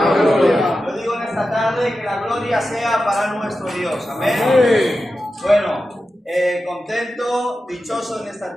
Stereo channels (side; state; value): both; normal; correlation 0.92